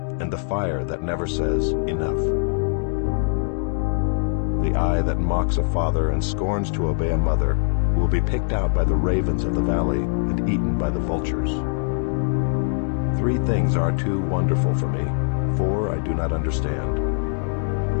and the fire that never says enough. The eye that mocks a father and scorns to obey a mother will be picked out by the ravens of the valley and eaten by the vultures. 3 things are too wonderful for me, 4 I do not understand.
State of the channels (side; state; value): right; silent; 64 dB below the other